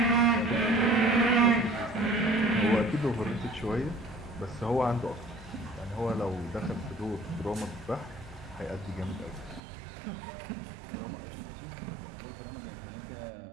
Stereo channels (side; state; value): left; drops out; at 9.6 s